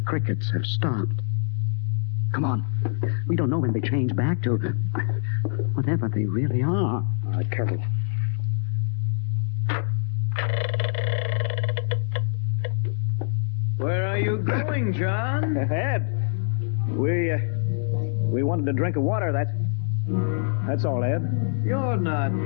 have stopped. Come on. We don't know when they change back to whatever they really are. All right, careful. Where are you going, John? Ed, we wanted a drink of water. That's all, Ed. You're not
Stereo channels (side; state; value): right; silent; 62 dB below the other